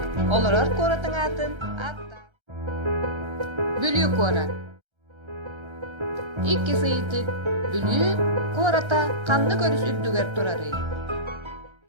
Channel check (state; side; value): late; left; 1.3 ms